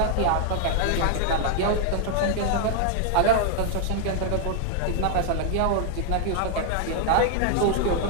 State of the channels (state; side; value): different; both; correlation -0.01